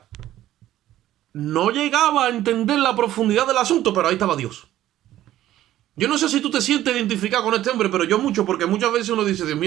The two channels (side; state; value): left; quieter; 13.5 dB